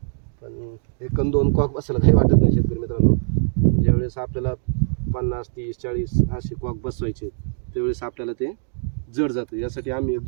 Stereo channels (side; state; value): left; silent; 64 dB below the other